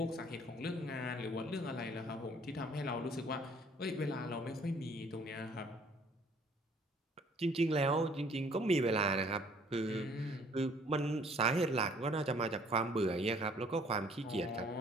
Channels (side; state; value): both; normal; correlation 0.58